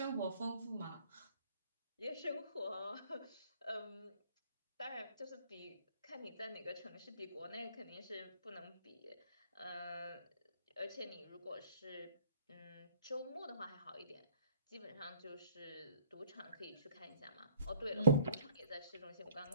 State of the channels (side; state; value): both; inverted; correlation -0.58